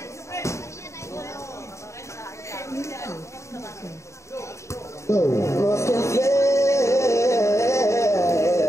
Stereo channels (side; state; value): right; late; 0.14 ms